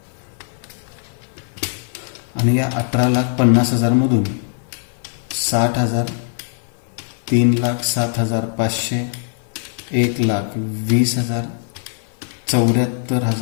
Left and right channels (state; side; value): silent; right; 55 dB below the other